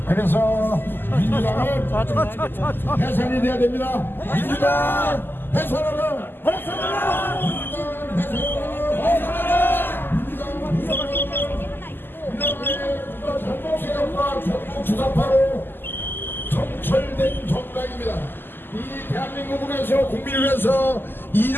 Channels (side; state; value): right; late; 0.096 ms